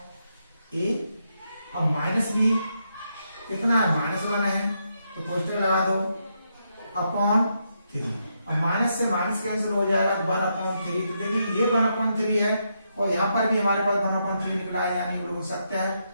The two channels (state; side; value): inverted; both; correlation -0.81